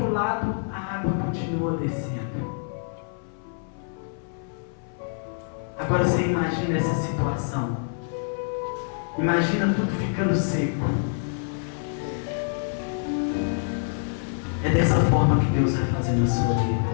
lado a água continua descendo. Agora você imagina essa situação. Imagina tudo ficando seco. É dessa forma que Deus vai fazer na sua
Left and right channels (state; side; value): silent; right; 61 dB below the other